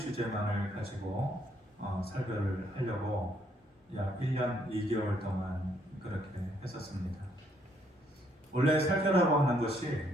가지고 설교를 하려고 약 1년 2개월 동안 그렇게 했었습니다. 원래 설교라고 하는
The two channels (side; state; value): both; normal; correlation 0.70